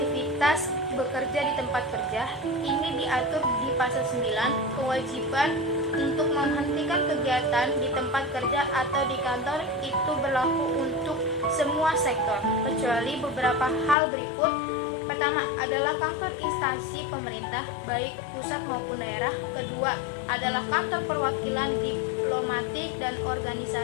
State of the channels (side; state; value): right; drops out; at 14.0 s